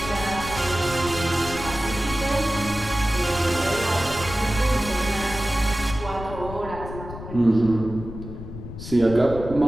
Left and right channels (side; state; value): left; noise; rumble, 10 dB below the sound